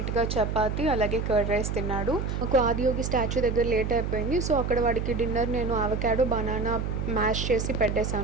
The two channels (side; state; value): right; noise; hum, 2 dB below the sound